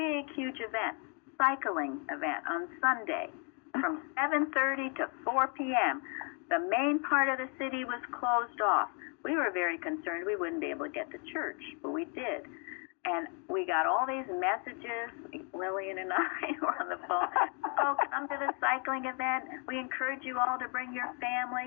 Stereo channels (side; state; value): right; quieter; 38.5 dB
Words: huge event, cycling event on Sunday from 7:30 to 4 p.m. The main part of the city was closed off. We were very concerned we wouldn't be able to get to church, but we did. And we got all these messages, Lillian and I were on the phone, oh, come to the cycling event. We encourage you all to bring your